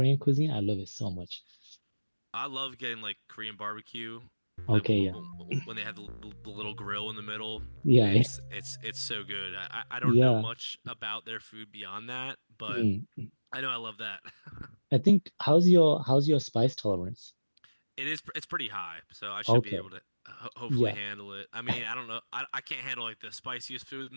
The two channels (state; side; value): inverted; both; correlation -1.00